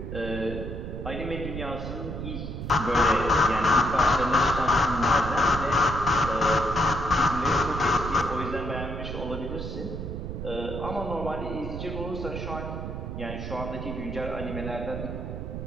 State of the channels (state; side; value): noise; right; rumble, 6 dB below the sound